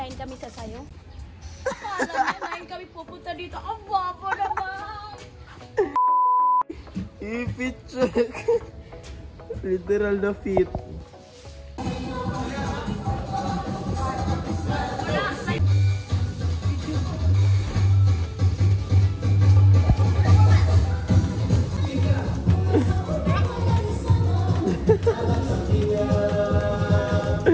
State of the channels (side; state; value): both; identical; correlation 1.00